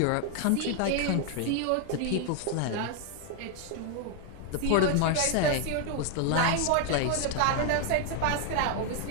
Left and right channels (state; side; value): different; both; correlation 0.01